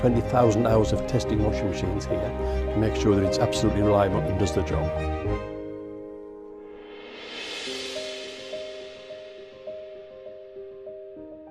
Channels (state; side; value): identical; both; correlation 1.00